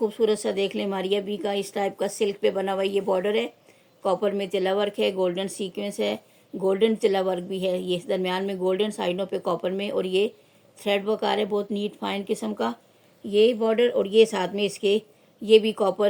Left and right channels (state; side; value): identical; both; correlation 1.00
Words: सा देख लें, मारिया बी का इस टाइप का सिल्क पे बना हुआ ये बॉर्डर है। कॉपर में तिला वर्क है, गोल्डन सीक्वेंस है, गोल्डन तिला वर्क भी है, ये दरमियान में गोल्डन, साइडों पे कॉपर में, और ये थ्रेड वर्क आ रहा है बहुत नीट फाइन किस्म का ये बॉर्डर, और ये साथ में इसके ये भी